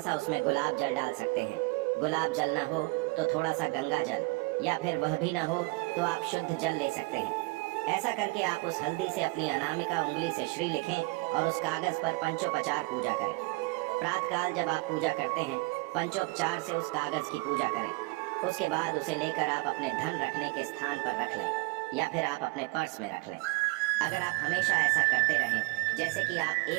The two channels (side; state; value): left; quieter; 25.8 dB